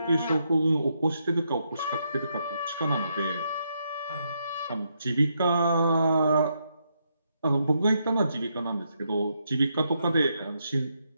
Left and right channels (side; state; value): both; inverted; correlation -0.79